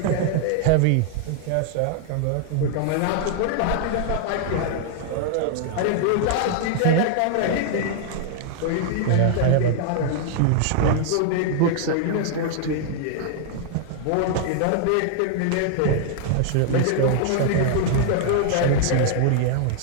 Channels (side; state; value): both; different; correlation -0.01